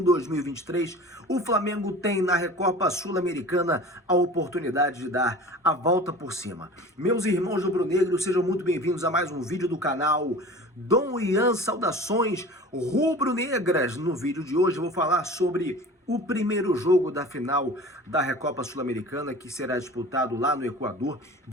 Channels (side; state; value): both; normal; correlation 0.40